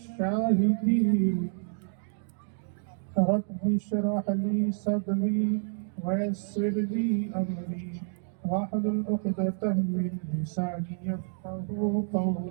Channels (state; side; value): silent; left; 59 dB below the other